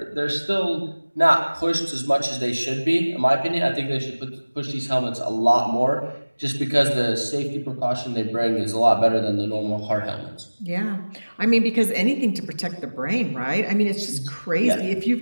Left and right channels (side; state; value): both; inverted; correlation -1.00